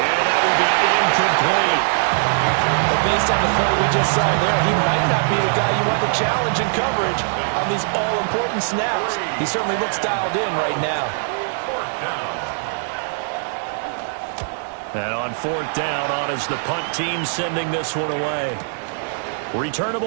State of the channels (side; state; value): left; silent; digital silence